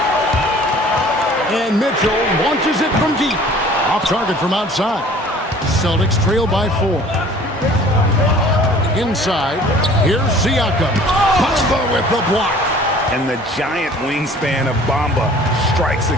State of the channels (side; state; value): both; normal; correlation 0.50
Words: And Mitchell launches it from deep. Off target from outside. Celtics trail by 4. Inside, here's Siakam. Bamba with the block. And the giant wingspan of Bamba strikes